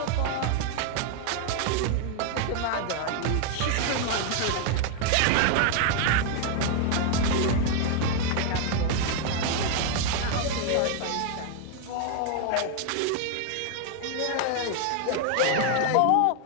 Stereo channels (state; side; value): different; both; correlation 0.00